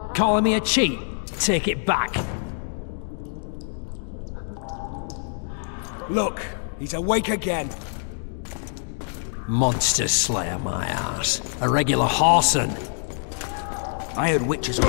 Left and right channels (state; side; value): silent; right; digital silence